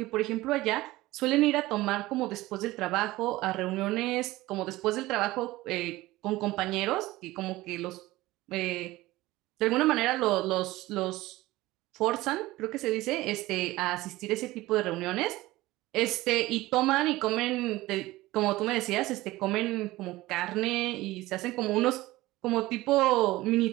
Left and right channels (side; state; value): left; quieter; 18.3 dB